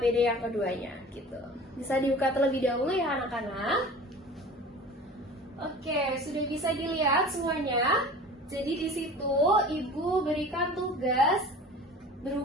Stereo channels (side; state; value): both; normal; correlation 0.40